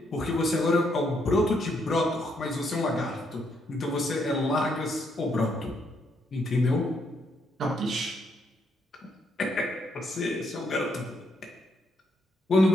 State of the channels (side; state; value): both; normal; correlation 0.75